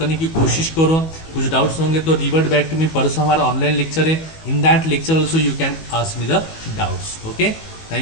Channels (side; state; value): right; late; 19 ms